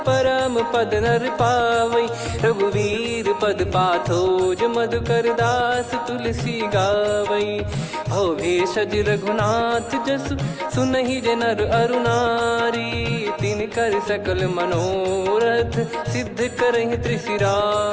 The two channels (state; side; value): identical; both; correlation 1.00